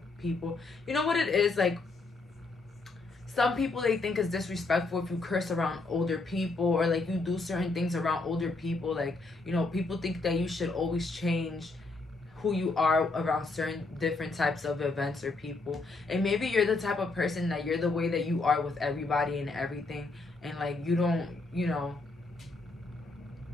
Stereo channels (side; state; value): right; quieter; 3.5 dB